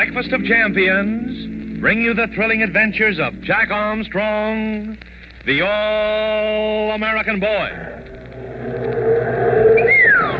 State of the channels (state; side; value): identical; both; correlation 1.00